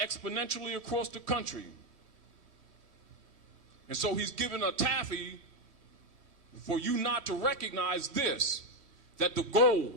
across the country. And so he's given a taffy for you not to recognize this, that the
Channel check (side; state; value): left; late; 3.1 ms